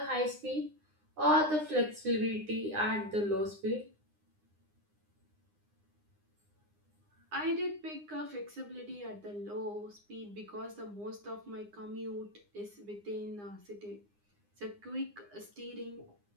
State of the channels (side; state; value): left; late; 9.8 ms